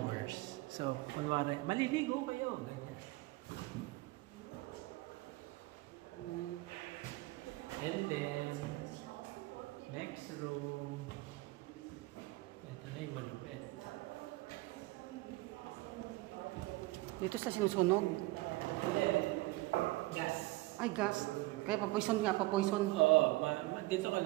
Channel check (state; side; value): quieter; left; 20.6 dB